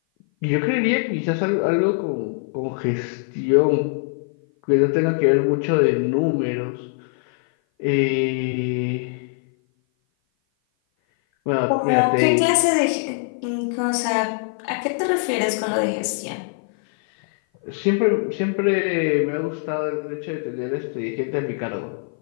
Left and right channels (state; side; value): silent; right; 56 dB below the other